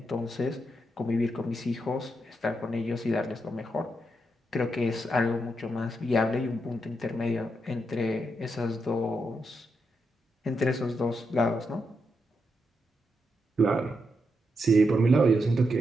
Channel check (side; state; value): both; normal; correlation 0.83